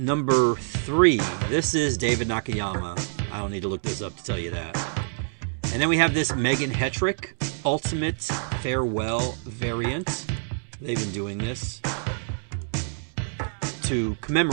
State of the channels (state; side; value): silent; left; digital silence